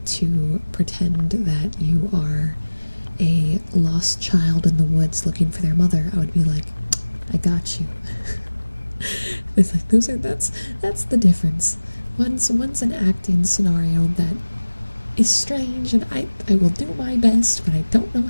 to pretend that you are a lost child in the woods looking for their mother, I would be like, I got you. It's like that's the difference. One's an acting scenario that is strange, and I will do my best, but I don't know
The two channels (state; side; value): inverted; both; correlation -1.00